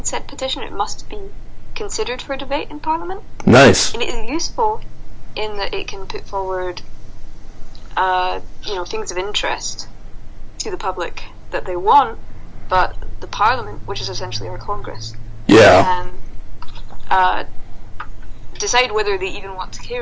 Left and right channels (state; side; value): identical; both; correlation 1.00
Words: said petition, it must be considered for debate in Parliament. Nice. And it is useful in that it can put forward, things of interest to the public that they want, but the Parliament, which is essentially our Congress, can decide whether they even want to